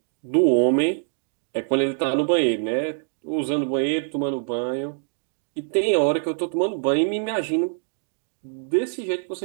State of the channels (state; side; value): silent; left; digital silence